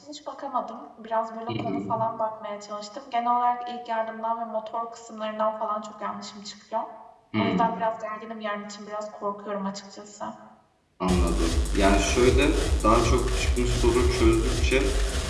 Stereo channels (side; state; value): both; identical; correlation 1.00